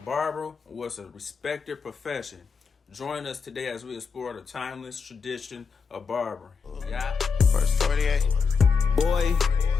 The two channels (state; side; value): quieter; right; 5.3 dB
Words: barber was a respected profession. Join us today as we explore the timeless tradition of barbering. Yeah. First 48. Boy,